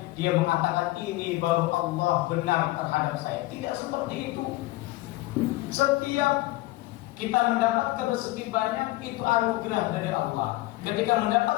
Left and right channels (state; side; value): quieter; right; 19.3 dB